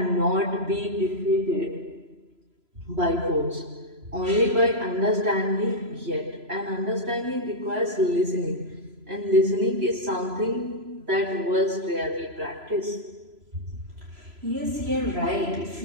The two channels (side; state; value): left; late; 3.0 ms